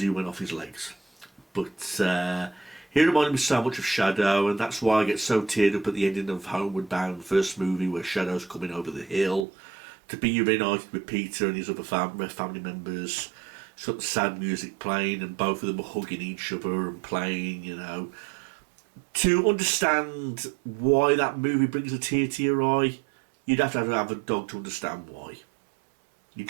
went off his legs. But he reminded me so much of Shadow, and that's why I get so teared up at the ending of Homeward Bound, first movie, where Shadow's coming over the hill to be reunited with Peter and his other family members. It's got the sad music playing, and both of them are hugging each other and playing, you know. To understand why that movie brings a tear to your eye, you'd have to have a dog to understand why. You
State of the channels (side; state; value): left; drops out; at 9.5 s